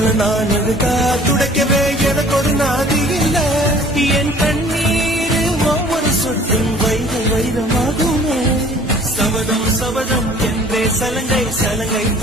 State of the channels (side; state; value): both; normal; correlation 0.51